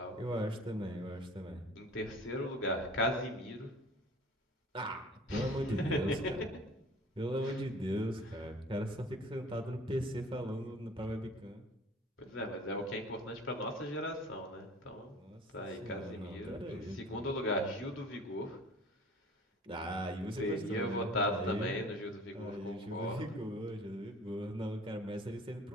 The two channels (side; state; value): both; normal; correlation 0.45